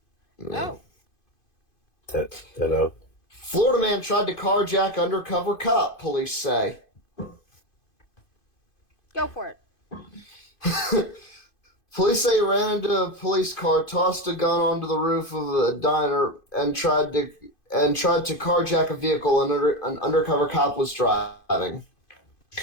Oh. Hello. Florida man tried to carjack undercover cop, police say. Go for it. Police say he ran into a police car, tossed a gun onto the roof of a diner, and tried to carjack a vehicle an undercover cop was driving.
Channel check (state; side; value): late; right; 2.5 ms